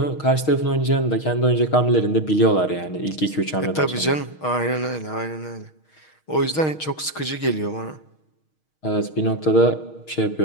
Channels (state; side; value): late; right; 6.4 ms